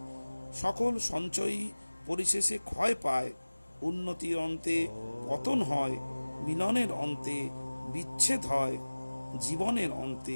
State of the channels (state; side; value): inverted; both; correlation -1.00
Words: সকল সঞ্চয়ই পরিশেষে ক্ষয় পায়, উন্নতির অন্তে পতন হয়, মিলনের অন্তে বিচ্ছেদ হয়, জীবনের